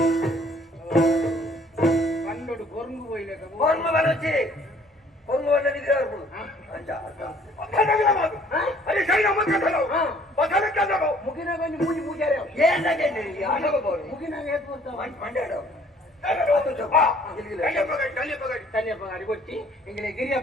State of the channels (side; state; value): both; normal; correlation 0.58